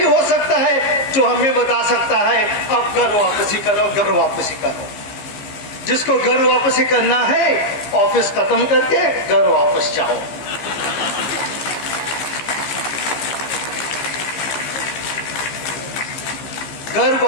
हो सकता है जो हमें बता सकता है अब घर वापसी करो, घर वापसी करो। जिसको घर वापसी करना है ऑफिस खत्म करके घर वापस जाओ। घर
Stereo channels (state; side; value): late; right; 15 ms